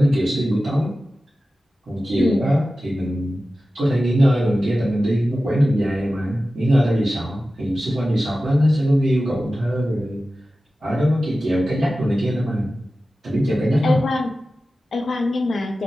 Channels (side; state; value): both; normal; correlation 0.94